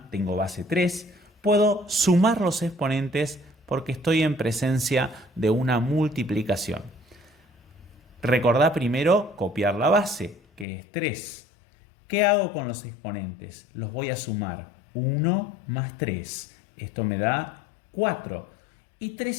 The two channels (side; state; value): right; drops out; at 10.7 s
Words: tengo base 3. Puedo sumar los exponentes porque estoy en presencia de una multiplicación. Recordá primero copiar la base, que es 3. ¿Qué hago con los exponentes? Los voy a sumar. 1 más 3. Esto me da 4. Y